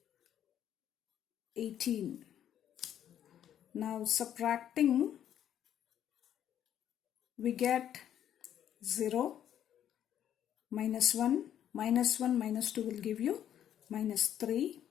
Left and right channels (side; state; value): right; quieter; 10.4 dB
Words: 18. Now subtracting, we get 0, minus 1, minus 1, minus 2 will give you minus 3,